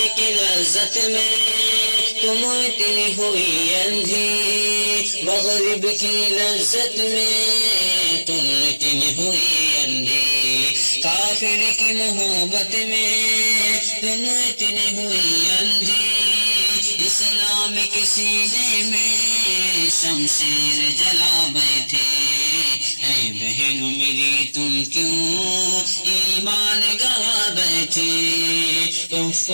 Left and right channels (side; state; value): both; inverted; correlation -1.00